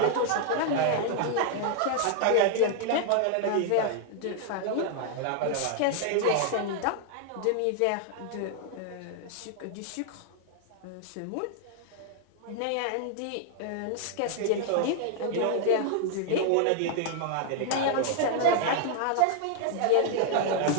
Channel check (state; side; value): different; both; correlation -0.01